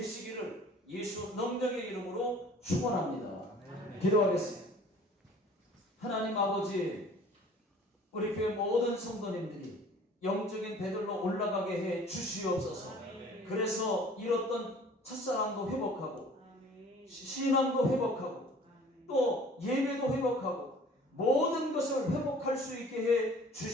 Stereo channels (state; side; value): normal; both; correlation 0.50